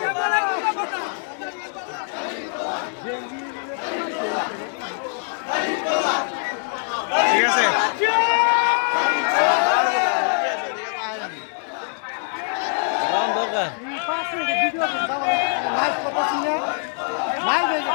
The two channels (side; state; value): right; silent; 63 dB below the other